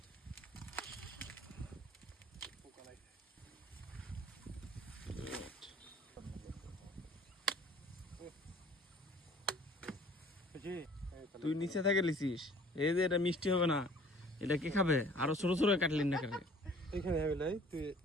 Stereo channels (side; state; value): both; normal; correlation 0.52